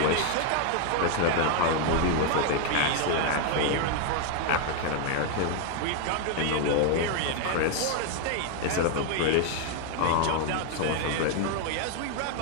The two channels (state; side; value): different; both; correlation 0.00